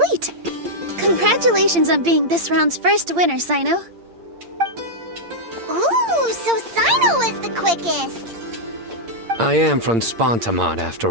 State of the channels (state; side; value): late; left; 8.7 ms